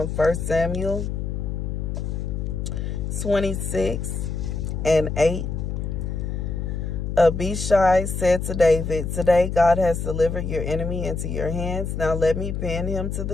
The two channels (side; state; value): left; noise; hum, 3 dB below the sound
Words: 1 Samuel 26:8. Abishai said to David, "Today God has delivered your enemy into your hands. Now let me pin him to